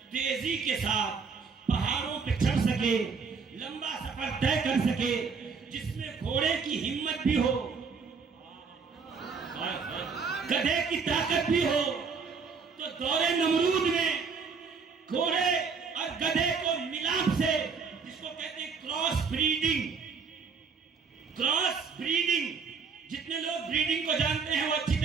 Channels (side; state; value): left; quieter; 5.3 dB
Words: تیزی کے ساتھ پہاڑوں پہ چڑھ سکے، لمبا سفر طے کر سکے، جس میں گھوڑے کی ہمت بھی ہو، گدھے کی طاقت بھی ہو۔ تو دور نمرود میں گھوڑے اور گدھے کو ملاپ سے، جس کو کہتے ہیں کراس بریڈنگ، کراس بریڈنگ، جتنے لوگ بریڈنگ کو جانتے ہیں وہ اچھی